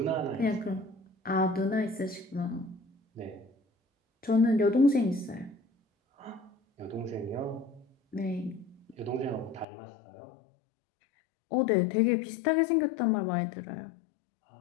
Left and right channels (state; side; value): drops out; right; at 9.7 s